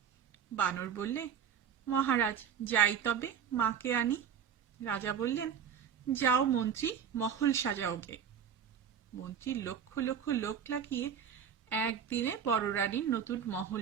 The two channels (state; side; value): quieter; left; 7.9 dB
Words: বানর বললে, মহারাজ, যাই তবে, মাকে আনি। রাজা বললেন, যাও মন্ত্রী, মহল সাজাও গে। মন্ত্রী লক্ষ লক্ষ লোক লাগিয়ে একদিনে বড় রানীর নতুন মহল